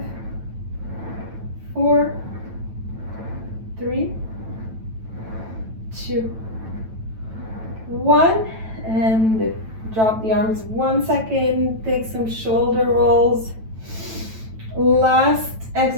4, 3, 2, 1, and drop the arms 1 second, take some shoulder rolls. Last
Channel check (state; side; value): late; left; 9.1 ms